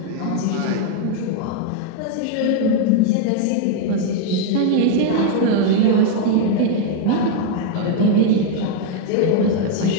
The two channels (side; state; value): both; different; correlation 0.00